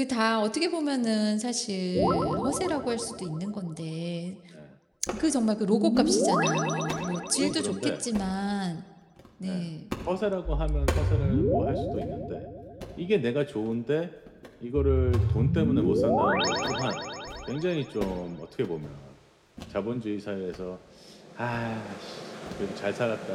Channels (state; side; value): identical; both; correlation 1.00